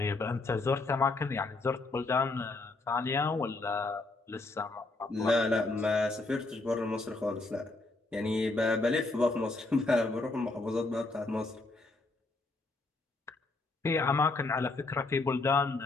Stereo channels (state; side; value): quieter; right; 3.3 dB